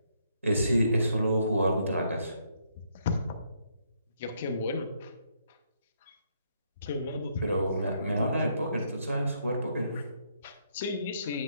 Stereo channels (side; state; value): both; inverted; correlation -0.73